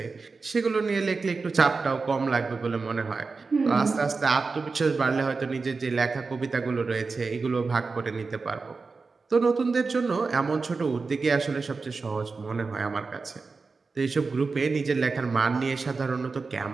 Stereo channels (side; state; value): left; quieter; 4.3 dB